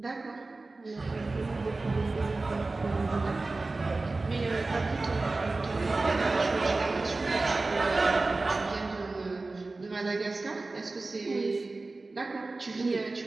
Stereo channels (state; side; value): quieter; left; 3.4 dB